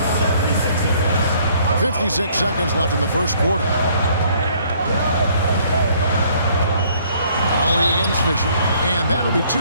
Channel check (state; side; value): inverted; both; correlation -0.61